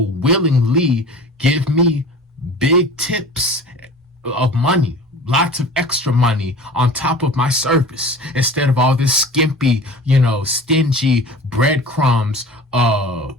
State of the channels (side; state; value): both; normal; correlation 0.40